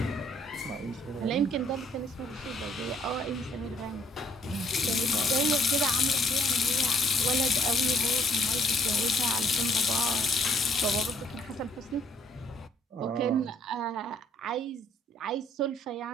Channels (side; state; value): both; normal; correlation 0.63